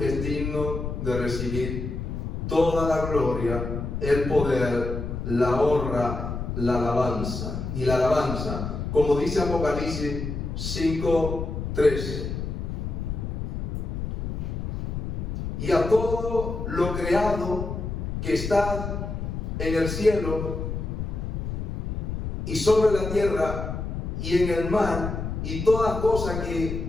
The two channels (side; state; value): left; noise; rumble, 4 dB below the sound